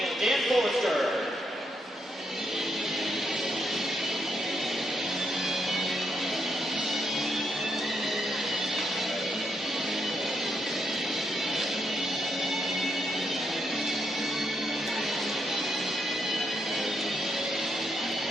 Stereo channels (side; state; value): both; normal; correlation 0.79